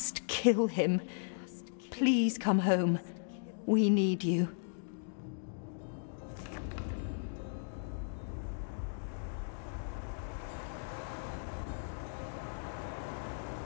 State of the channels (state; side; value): silent; right; digital silence